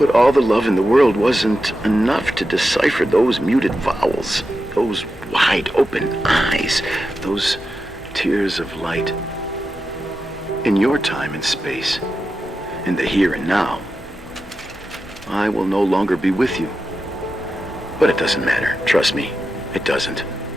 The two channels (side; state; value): both; normal; correlation 0.90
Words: all the love in the world wasn't enough to decipher those muted vowels, those wide open eyes, those tears of light. In your time and space, in the here and now, I will no longer be with you. But it doesn't matter. Trust me, it doesn't.